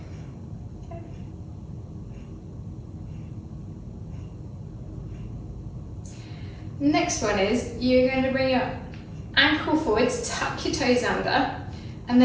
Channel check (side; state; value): both; identical; correlation 1.00